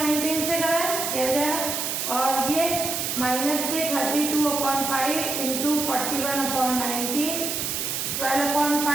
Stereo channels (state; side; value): noise; right; hiss, 2 dB below the sound